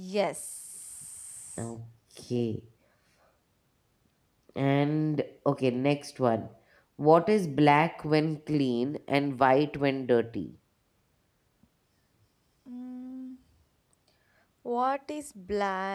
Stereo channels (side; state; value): both; identical; correlation 1.00